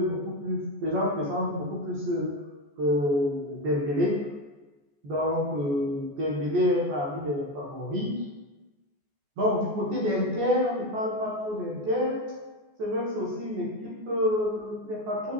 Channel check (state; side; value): late; left; 14 ms